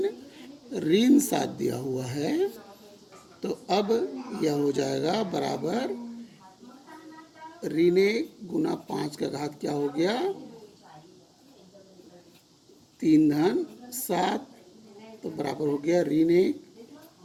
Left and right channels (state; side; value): identical; both; correlation 1.00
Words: ऋण 7 दिया हुआ है। तो अब यह हो जाएगा बराबर ऋण 1 गुना 5 का घात क्या हो गया 3 धन 7। तो बराबर हो गया ऋण 1